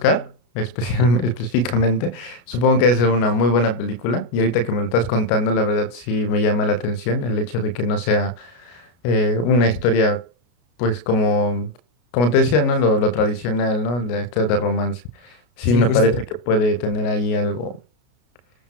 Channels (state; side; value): late; right; 33 ms